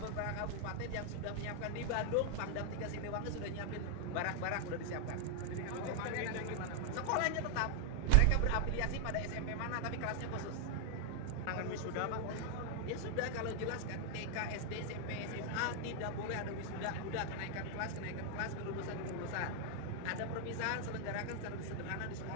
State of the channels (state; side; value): different; both; correlation 0.00